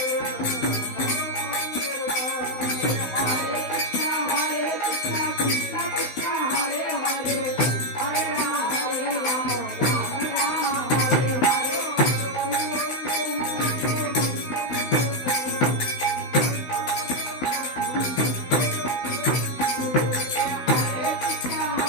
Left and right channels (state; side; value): late; right; 16 ms